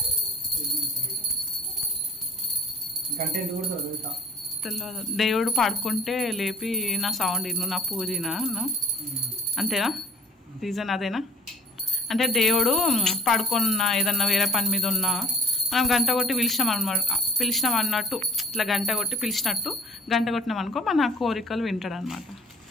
తెలియదు. దేవుడు పడుకుంటే లేపి నా సౌండ్ ఇను, నా పూజ అంతేనా? రీజన్ అదేనా? అంటే దేవుడు పడుకున్న ఏదన్నా వేరే పని మీద ఉన్నా మనం గంట కొట్టి పిలిచినాం అన్నట్టు, ఇట్లా గంట కొట్టి పిలిచినట్టు గంట కొట్టినాం అనుకో మన కోరికలు వింటాడు అనమాట.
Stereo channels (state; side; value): normal; both; correlation 0.49